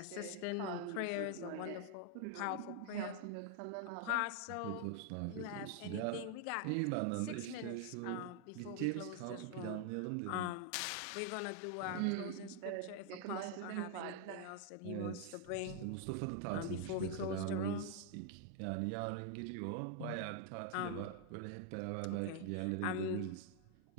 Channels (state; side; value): different; both; correlation 0.00